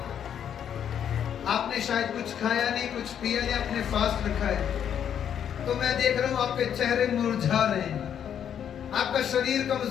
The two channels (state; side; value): quieter; right; 9.0 dB